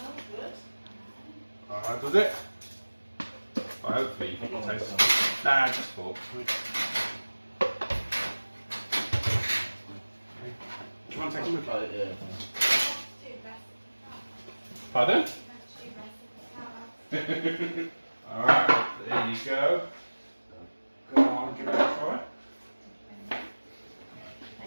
good. Alright, does it? Well, hopefully you can taste it. Nah, just forks. Do you want to take a look at it? Pardon? Alright, there you go. Go on, give it a try.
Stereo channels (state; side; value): inverted; both; correlation -1.00